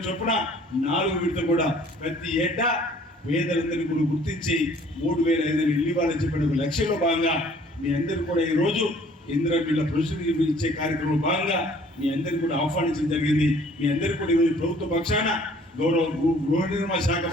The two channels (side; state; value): both; normal; correlation 0.55